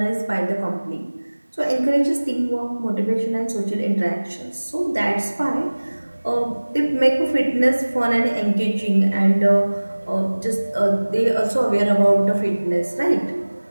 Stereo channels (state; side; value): inverted; both; correlation -1.00